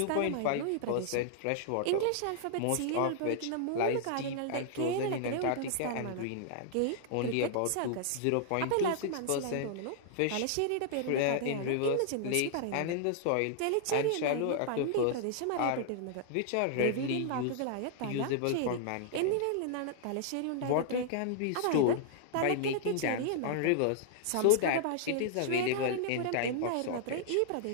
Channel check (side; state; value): both; different; correlation -0.01